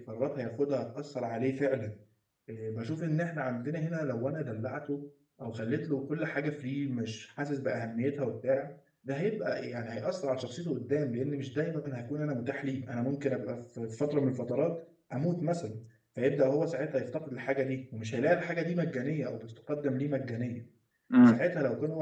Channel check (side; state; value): both; identical; correlation 1.00